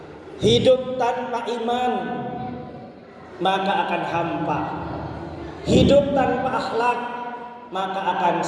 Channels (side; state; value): both; identical; correlation 1.00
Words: Hidup tanpa iman maka akan hampa. Hidup tanpa akhlak maka akan